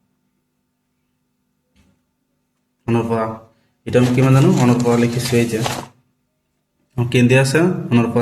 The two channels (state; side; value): identical; both; correlation 1.00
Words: অনৰ পৰা এটা আমি কিমান জানো অনৰ পৰা লিখিছো এই যে কেন্দ্ৰে আছে অনৰ